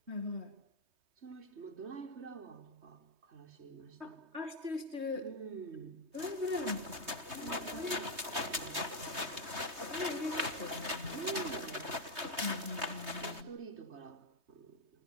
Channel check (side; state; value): left; late; 3.2 ms